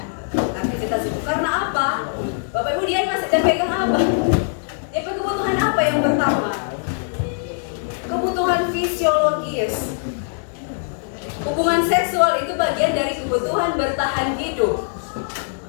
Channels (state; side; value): silent; right; digital silence